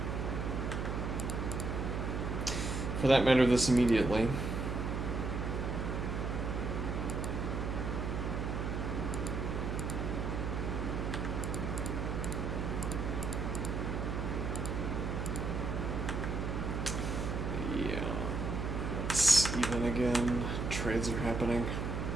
For that matter, this immediately. Yeah. It's even again. Trades are happening.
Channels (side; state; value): right; noise; hum, 2 dB below the sound